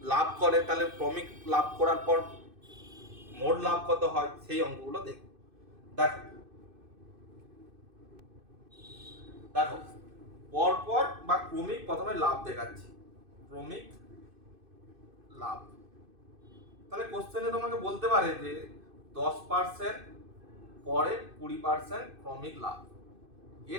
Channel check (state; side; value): late; left; 2.6 ms